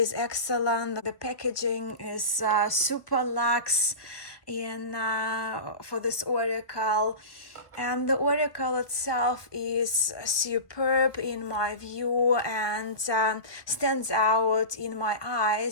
excellent. The packaging is super luxe for this oracle. And the oracle itself is superb in my view and stands out in my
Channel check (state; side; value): late; right; 1.1 ms